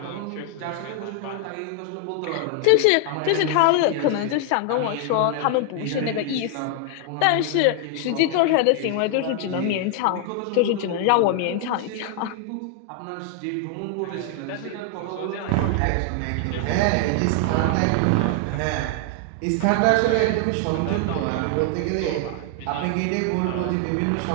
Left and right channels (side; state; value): both; different; correlation 0.00